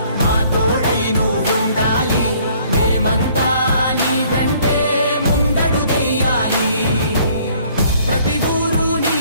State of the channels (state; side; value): inverted; both; correlation -0.60